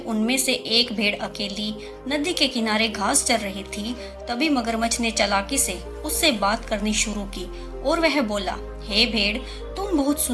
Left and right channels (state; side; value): identical; both; correlation 1.00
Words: उनमें से एक भेड़ अकेली नदी के किनारे घास चर रही थी, तभी मगरमच्छ ने चालाकी से उससे बात करनी शुरू की और वह बोला, हे भेड़, तुम बहुत